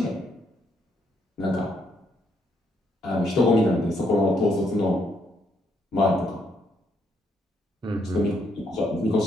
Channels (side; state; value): both; normal; correlation 0.74